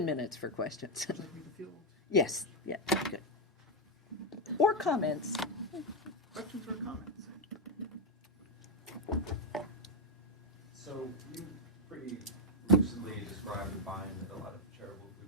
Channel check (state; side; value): normal; both; correlation 0.03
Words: minutes for questions. Yes, yeah, good. Or comments. Questions or comments? So you pretty lucidly described the bind that a lot of charitable